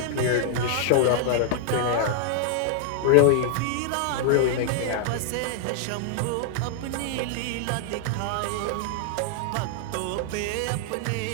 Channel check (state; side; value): different; both; correlation -0.01